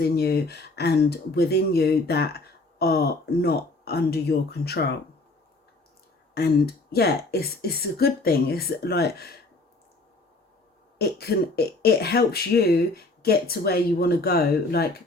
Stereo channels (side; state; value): right; quieter; 3.0 dB